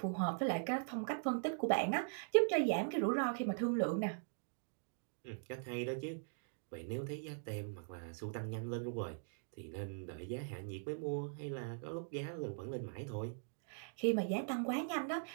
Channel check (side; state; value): left; silent; digital silence